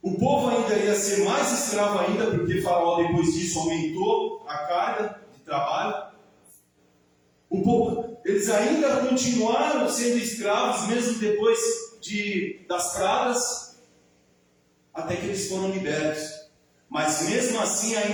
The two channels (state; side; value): identical; both; correlation 1.00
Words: O povo ainda ia ser mais escravo ainda, porque Faraó, depois disso, aumentou a carga de trabalho. O povo, eles ainda continuaram sendo escravos, mesmo depois das pragas, até que eles foram libertos. Mas mesmo assim